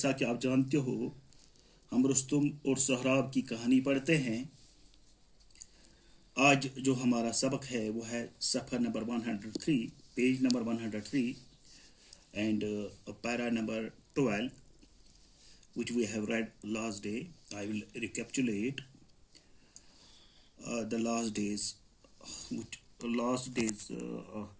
कि आप जानते हो हम रुस्तुम और सोहराब की कहानी पढ़ते हैं। आज जो हमारा सबक है वो है सफ़र number 103, page number 103 and para number 12 which we have read last day. I will recapitulate the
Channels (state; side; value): identical; both; correlation 1.00